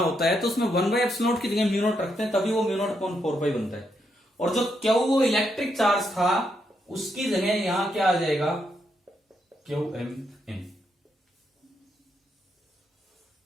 होता है तो उसमें 1/एप्सिलॉन नॉट की जगह म्यू नॉट रखते हैं, तभी वो म्यू नॉट अपॉन 4π बनता है। और जो क्यू वो इलेक्ट्रिक चार्ज था उसकी जगह यहां क्या आ जाएगा, क्यू एम एन।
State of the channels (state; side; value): normal; both; correlation 0.80